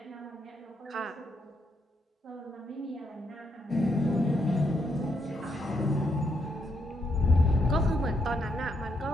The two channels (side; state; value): both; normal; correlation 0.77